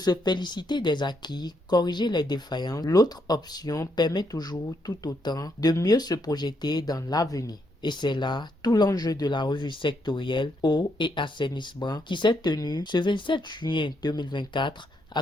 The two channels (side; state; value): both; normal; correlation 0.77